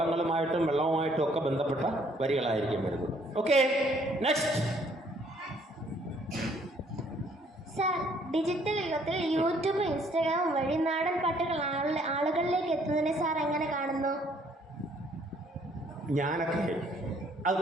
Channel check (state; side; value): normal; both; correlation 0.63